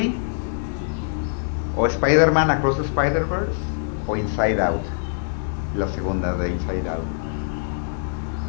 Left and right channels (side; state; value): right; silent; digital silence